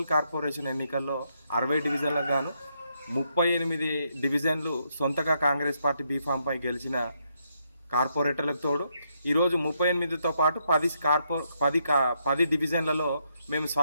కార్పొరేషన్ ఎన్నికల్లో 60 డివిజన్లకు గాను 38 డివిజన్లు సొంతగా కాంగ్రెస్ పార్టీ బీఫామ్పై గెలిచిన కార్పొరేటర్లకు తోడు ఈరోజు 38తో పాటు 10 డివిజన్లలో మేము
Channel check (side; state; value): both; inverted; correlation -0.77